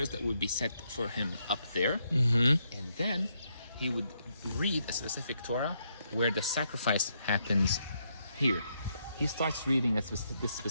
that would be set for him up there, and then he would read a specific Torah where the sacrifice happens here. He starts reading this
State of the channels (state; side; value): inverted; both; correlation -0.77